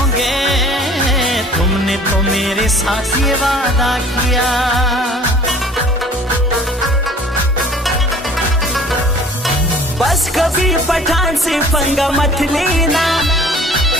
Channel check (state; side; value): normal; both; correlation 0.49